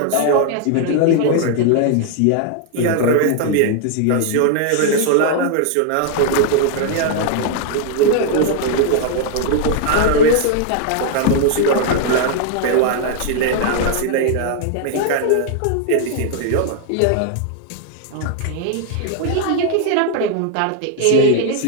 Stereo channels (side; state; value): both; different; correlation 0.00